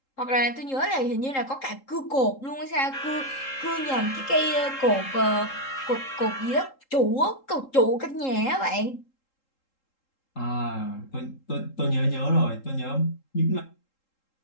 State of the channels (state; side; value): late; right; 3.8 ms